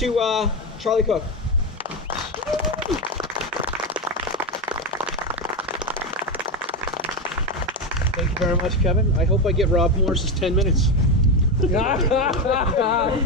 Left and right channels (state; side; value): normal; both; correlation 0.13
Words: to Charlie Cook. Thank you very much, Kevin. I hope I get Rob Morris's 10 minutes.